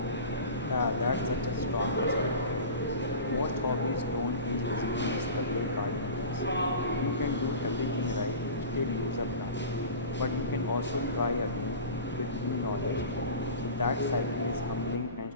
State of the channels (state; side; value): inverted; both; correlation -0.35